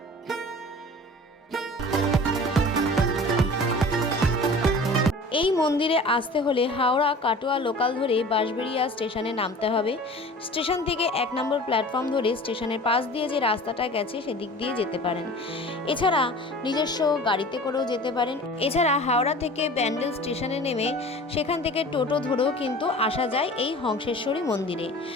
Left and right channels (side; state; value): both; normal; correlation 0.41